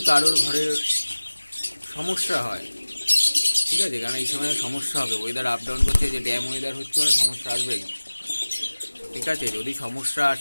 কারোর ঘরের সমস্যা হয়, ঠিক আছে, কারণ এই সময় সমস্যা হবে, ওয়েদার আপ ডাউন করছে, যে ড্যাম ওয়েদার হচ্ছে, মানে সমস্যা আসবেই, ঠিক আছে। যদি সমস্যা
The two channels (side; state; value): both; inverted; correlation -1.00